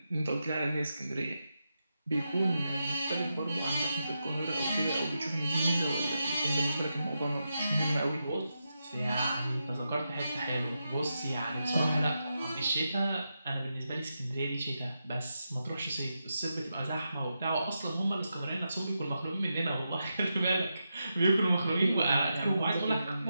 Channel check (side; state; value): both; inverted; correlation -0.87